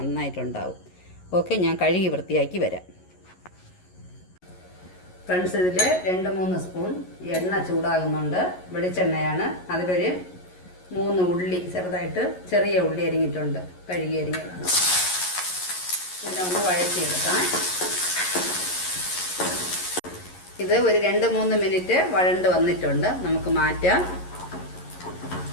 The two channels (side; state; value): right; late; 11 ms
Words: ഓക്കെ, ഞാൻ കഴുകി വൃത്തിയാക്കി വരാം. ഫ്രണ്ട്സ്, ഇതിൽ 2-3 സ്പൂൺ എണ്ണ ചൂടാകുന്നുണ്ട്. വെളിച്ചെണ്ണയാണ്. അതിലൊരു 3 ഉള്ളി, ചെറിയ ഉള്ളി അരിഞ്ഞിട്ടുണ്ട്, കഴുകി അരിഞ്ഞതാണ്. ഇതിനെ ഒന്ന് വഴറ്റിയെടുക്കാം. ഇത് ഒരു 2-3 മിനിറ്റ് വഴണ്ട് വന്നിട്ടുണ്ട്. നമുക്ക് മാറ്റാം.